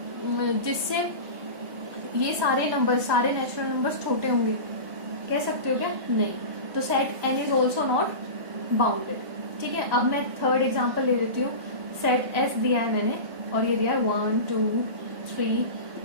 जिससे ये सारे नेचुरल नंबर्स छोटे होंगे, कह सकते हो क्या? नहीं। तो set n is also not bounded, ठीक है। अब मैं थर्ड एग्जाम्पल ले लेती हूँ। सेट S दिया है मैंने और ये दिया है 1, 2,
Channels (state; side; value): late; left; 1.2 ms